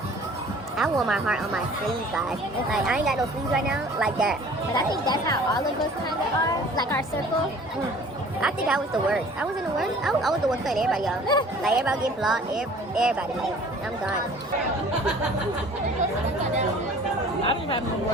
I wore my heart on my sleeves, guys. It's like I ain't got no sleeves right now, like that. But I think that's how all of us kind of are, like our circle. I think I was the worst. I wasn't the worst. I was the one cutting everybody off. Like everybody getting blocked. Everybody. Like I'm gone. I don't have no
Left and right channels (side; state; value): both; normal; correlation 0.49